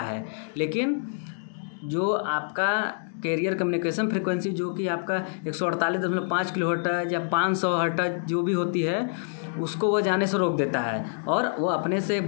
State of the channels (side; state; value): right; silent; digital silence